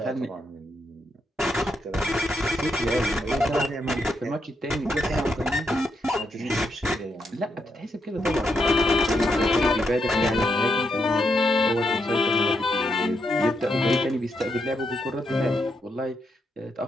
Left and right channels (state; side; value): normal; both; correlation 0.80